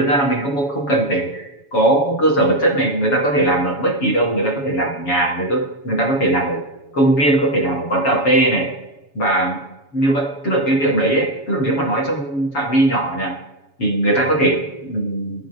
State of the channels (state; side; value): late; right; 7.2 ms